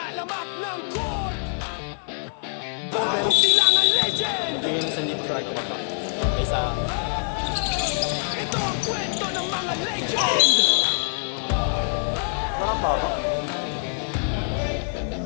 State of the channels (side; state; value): right; silent; digital silence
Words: alamat ng core. Bago silangan legend. Hindi yun sa Leaf Strike ko pa. Isa. Ito ang kwento ng mga legend. Parang baba.